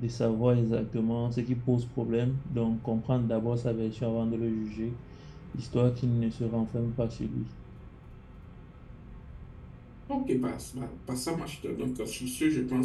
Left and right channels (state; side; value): identical; both; correlation 1.00